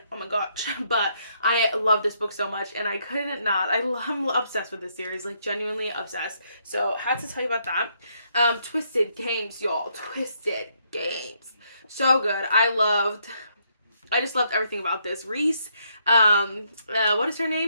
Oh my gosh. But I love this book so much, and I couldn't not. I'm obsessed with this series, like, genuinely obsessed. So, had to tell you about that. Twisted Games, y'all. Twisted Games. So good. I just loved everything about this. Reese, what is her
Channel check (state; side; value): inverted; both; correlation -0.73